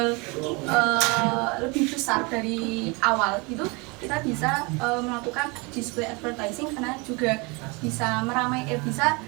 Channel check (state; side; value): quieter; left; 28.3 dB